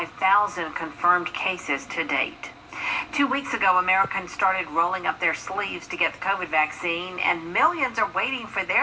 confirmed cases to date. 2 weeks ago, Americans started rolling up their sleeves to get the COVID vaccine, and millions are waiting for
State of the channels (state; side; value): identical; both; correlation 1.00